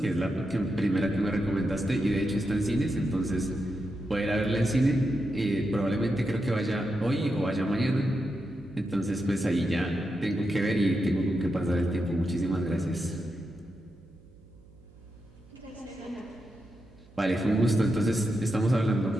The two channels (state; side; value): noise; right; hum, 25 dB below the sound